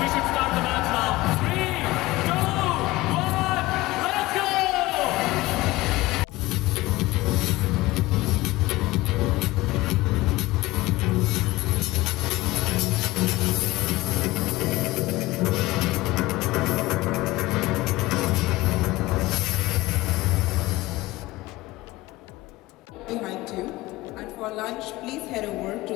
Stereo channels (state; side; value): quieter; right; 19.3 dB